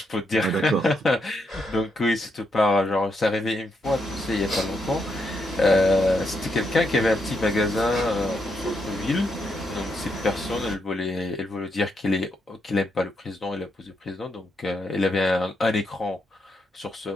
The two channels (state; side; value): normal; both; correlation 0.80